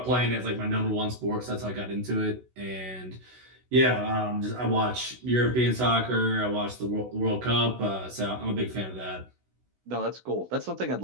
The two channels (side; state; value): left; late; 16 ms